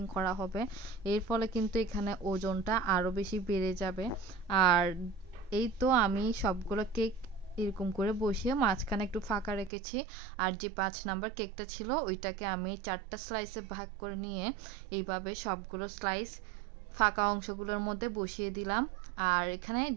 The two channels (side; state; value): left; drops out; at 9.7 s